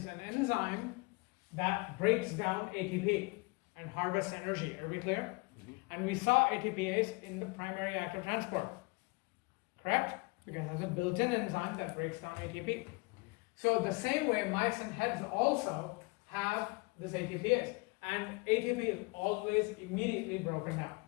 an enzyme that breaks down ATP and harvests energy. Are we clear? Mm-hmm. And we saw ATPase in the primary active transport. Correct? Because it has a built-in enzyme that breaks down ATP. So the same way myosin heads also have this ATPase. And ATP is always immediately broken down.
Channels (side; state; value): right; quieter; 27.4 dB